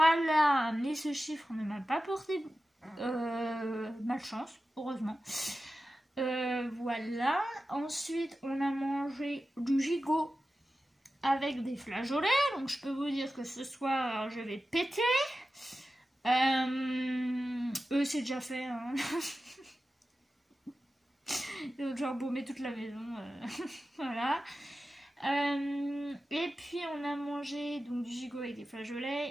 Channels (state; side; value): normal; both; correlation 0.94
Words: mais ce chiffre ne m'a pas porté malchance, heureusement. Voilà, ensuite on a mangé du gigot avec des flageolets, donc je peux vous dire que ce soir je vais péter. Eux c'est déjà fait, hein. Donc j'ai embaumé toute la maison, voilà. Et puis on a mangé donc du gigot avec des flageolets,